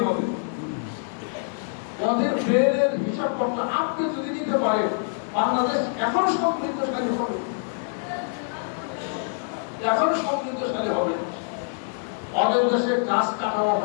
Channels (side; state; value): right; silent; digital silence